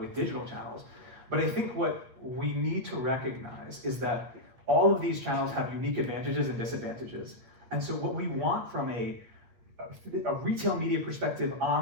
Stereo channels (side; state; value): left; late; 8.6 ms